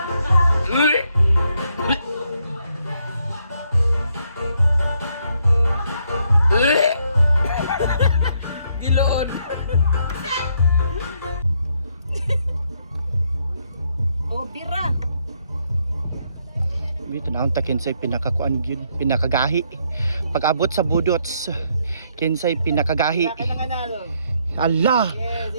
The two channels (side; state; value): both; inverted; correlation -0.73